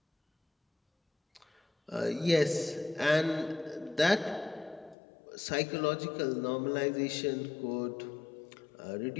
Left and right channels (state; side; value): drops out; right; at 5.0 s